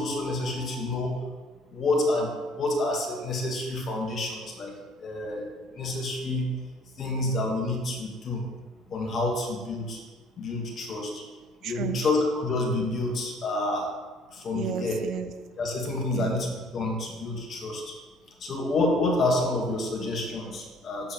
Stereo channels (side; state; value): both; normal; correlation 0.56